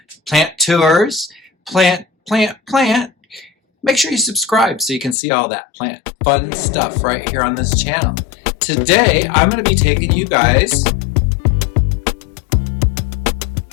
plant tours, plant, make sure you subscribe so you can see all that plant fun stuff right here on this channel. Today, I'm going to be taking you guys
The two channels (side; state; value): right; drops out; at 5.2 s